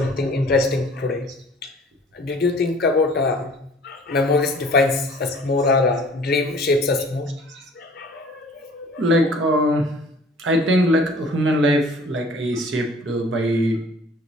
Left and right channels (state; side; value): normal; both; correlation 0.50